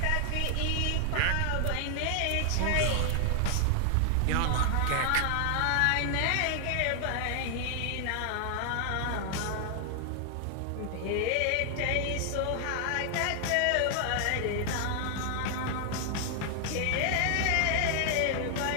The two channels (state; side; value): different; both; correlation 0.00